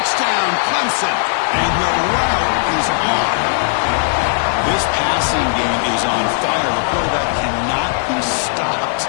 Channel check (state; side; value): silent; right; digital silence